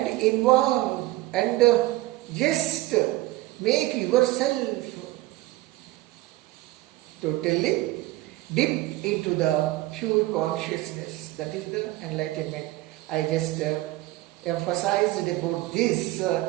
involve and just make yourself totally dip into the pure consciousness. That is the enlightenment. I just emphasized about this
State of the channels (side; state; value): left; quieter; 18.1 dB